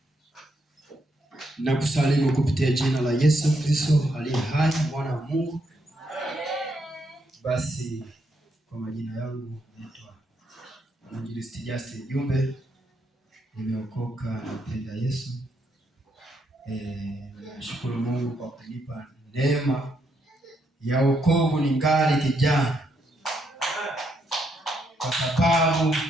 Nakusalimu kupitia jina la Yesu Kristo aliye hai, mwana wa Mungu. Basi kwa majina yangu naitwa Mwinjilisti Justin Jumbe. Nimeokoka, nampenda Yesu. Nashukuru Mungu kwa kunipa neema ya wokovu ningali kijana. Kwa sababu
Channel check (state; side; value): normal; both; correlation 0.77